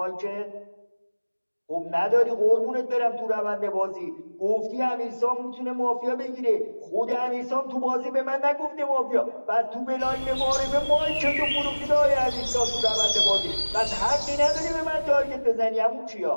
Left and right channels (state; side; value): inverted; both; correlation -1.00